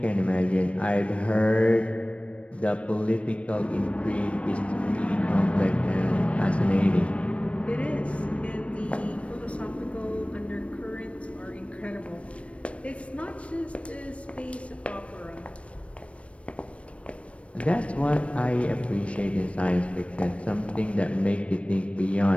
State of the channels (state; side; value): late; right; 0.062 ms